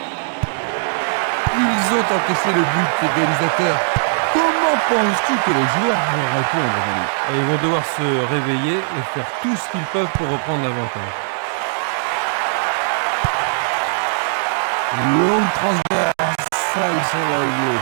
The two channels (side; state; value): left; silent; digital silence